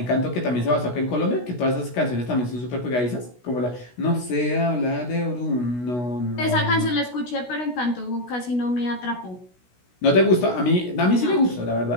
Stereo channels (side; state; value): right; late; 16 ms